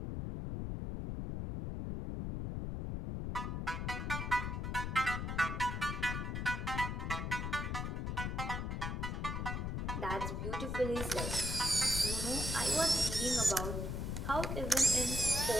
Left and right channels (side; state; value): left; noise; rumble, 2 dB below the sound